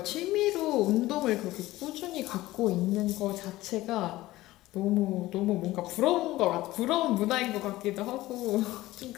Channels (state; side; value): quieter; right; 17.3 dB